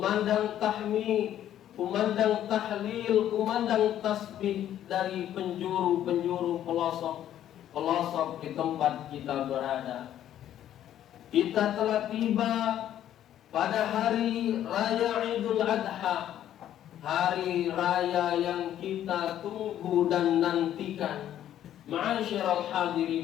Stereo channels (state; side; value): quieter; right; 11.4 dB